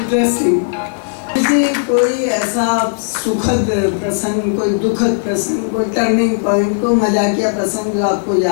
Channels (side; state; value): right; silent; 56 dB below the other